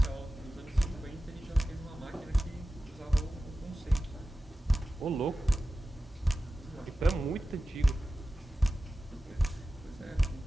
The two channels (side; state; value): both; normal; correlation 0.94